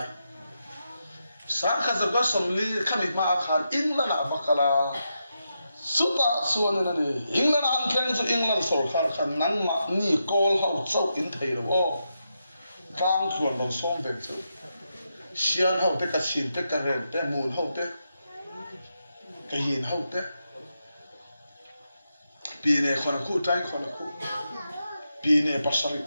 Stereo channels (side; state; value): both; inverted; correlation -0.85